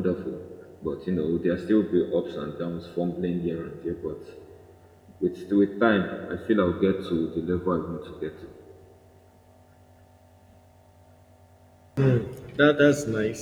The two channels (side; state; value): both; identical; correlation 1.00